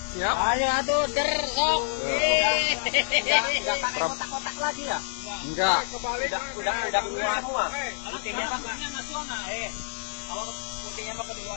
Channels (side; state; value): right; silent; 60 dB below the other